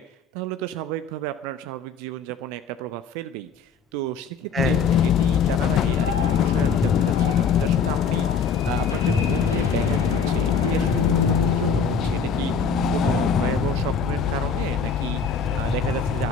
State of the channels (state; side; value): quieter; right; 5.2 dB